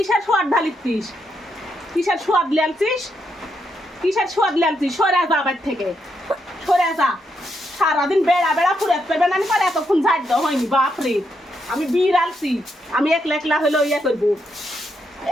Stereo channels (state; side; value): normal; both; correlation 0.80